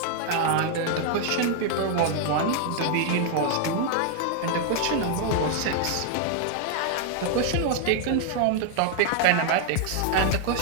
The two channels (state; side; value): different; both; correlation 0.00